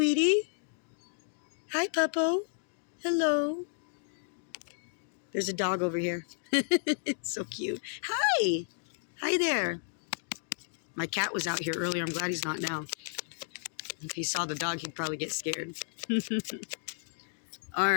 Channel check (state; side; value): silent; right; digital silence